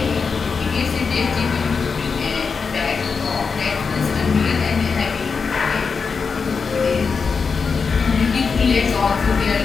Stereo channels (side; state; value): right; quieter; 5.3 dB